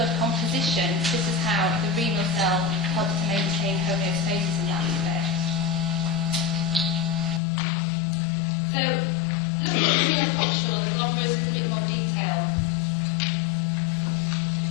composition. This is how the renal cell helps to maintain homeostasis in that respect. So looking at the renal coxure, the glomerulus in a bit more detail.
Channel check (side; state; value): right; drops out; at 7.4 s